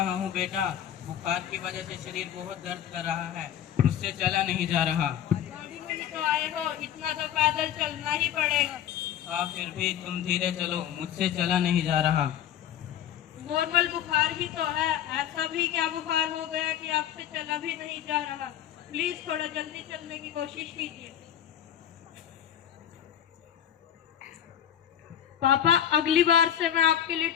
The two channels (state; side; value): quieter; right; 10.4 dB